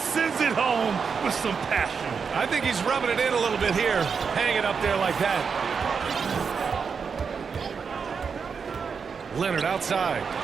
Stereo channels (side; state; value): left; quieter; 5.9 dB